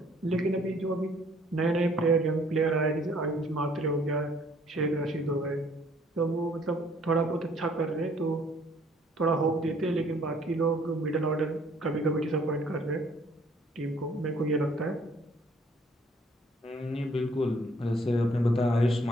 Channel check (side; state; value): both; normal; correlation 0.61